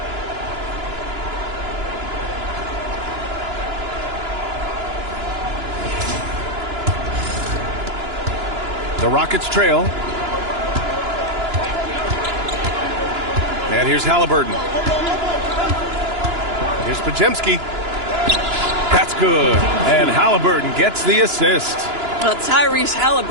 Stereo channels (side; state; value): left; late; 2.9 ms